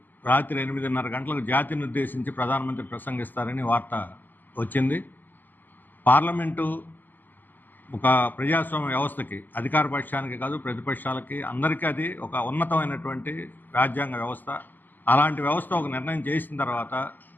రాత్రి 8:30 గంటలకు జాతిని ఉద్దేశించి ప్రధానమంత్రి ప్రసంగిస్తారని వార్త వచ్చింది. పార్లమెంటు ఒక ప్రజాస్వామ్య వ్యవస్థకి, అధికార పక్షానికి కాదు ప్రతిపక్షాలకి అందరికీ అది ఒక ఉన్నతమైనటువంటి రాజ్యాంగ వ్యవస్థ. అలాంటి వ్యవస్థ ఒక నిర్ణయం చేసిన తర్వాత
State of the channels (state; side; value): late; right; 0.088 ms